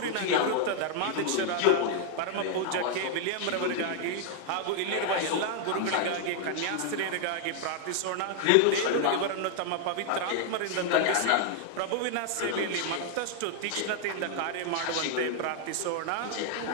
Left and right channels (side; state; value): both; different; correlation 0.00